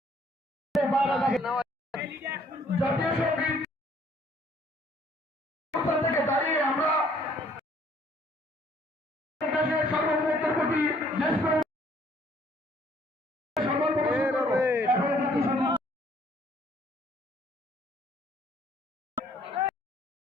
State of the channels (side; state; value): both; normal; correlation 0.62